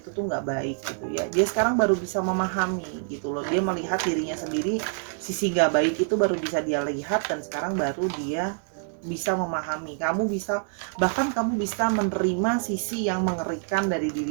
tuh nggak baik gitu ya. Dia sekarang baru bisa memahami gitu loh, dia melihat dirinya sendiri, sisi nggak baik itu baru bisa dia lihat, dan sekarang baru dia bisa memahami. Bahkan kamu bisa menerima sisi yang mengerikan dari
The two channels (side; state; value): left; silent; 61 dB below the other